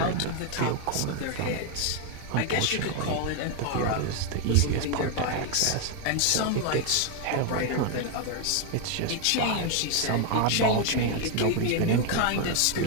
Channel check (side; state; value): both; different; correlation 0.01